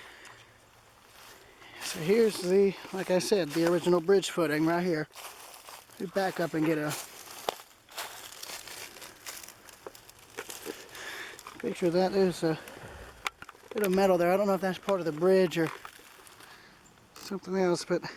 So here's the, like I said, the original bridge footing right here. We back up and get a picture of that. There's a bit of metal there. I don't know if that's part of the bridge or something else, but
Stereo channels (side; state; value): both; identical; correlation 1.00